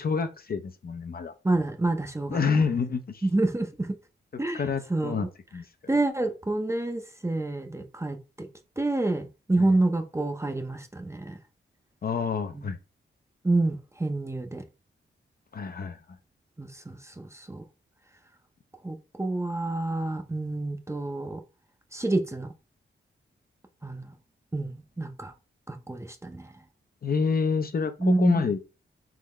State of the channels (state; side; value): normal; both; correlation 0.85